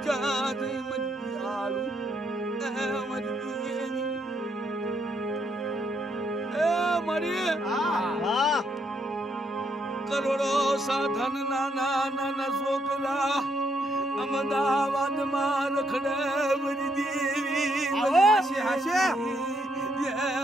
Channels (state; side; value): normal; both; correlation 0.74